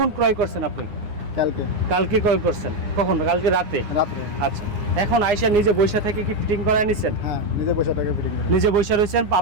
ক্রয় করছেন আপনি? কালকে ক্রয় করছেন। কখন? কালকে রাতে। আচ্ছা, এখন আইসা নিজে বৈশা থেকে কি ফিটিং করায় নিছেন? হ্যাঁ, নিজে বৈশা থেকে ফিটিং করে। নিজে বৈশা রয়েছেন,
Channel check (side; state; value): left; late; 9.7 ms